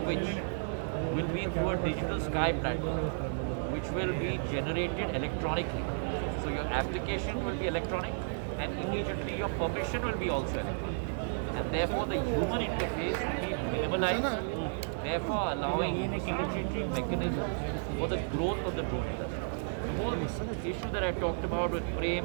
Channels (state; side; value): silent; left; digital silence